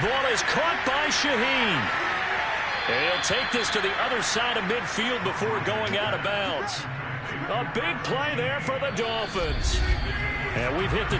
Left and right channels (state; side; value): identical; both; correlation 1.00